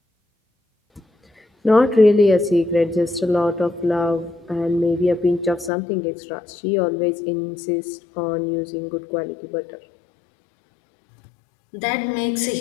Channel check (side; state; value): right; drops out; at 5.7 s